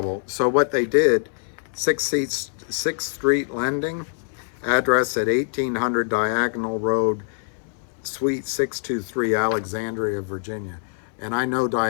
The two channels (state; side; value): silent; right; 63 dB below the other